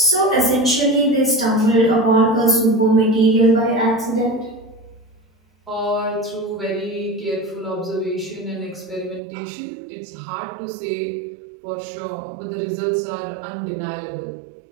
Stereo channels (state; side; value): drops out; left; at 9.2 s